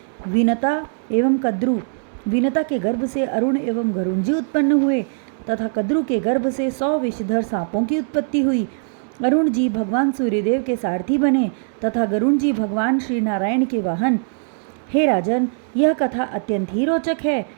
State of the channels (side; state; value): left; silent; digital silence